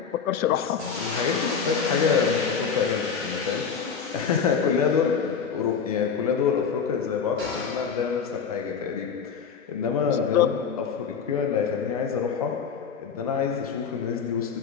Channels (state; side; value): quieter; right; 6.4 dB